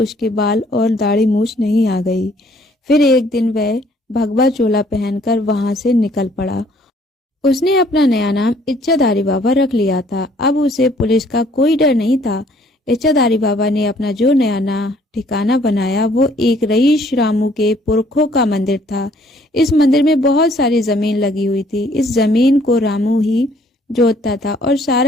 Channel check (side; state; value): both; normal; correlation 0.61